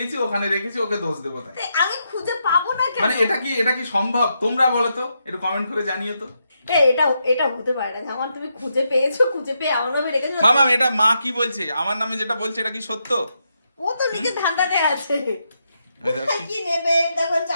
ওখানে রেখেছি, ওকে দোষ দেবো। তাই আমি খুঁজে পাবো না কেন? মানে এটা কি সম্ভব? তোমরা বলো তো, একটু কমেন্ট করে জানিও তো। এটা হতে পারে না যেমন তুমি খুঁজে পেয়েছো, খুঁজে পেয়ে আমার নামে রেখেছো। মামা এটা মা কি বলছে, আমার নামে যেটা বলছে এটা কি সত্য? ও তো নিজে ধান্দাতে আছে, কি নেবে দেখো,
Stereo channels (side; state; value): both; inverted; correlation -0.82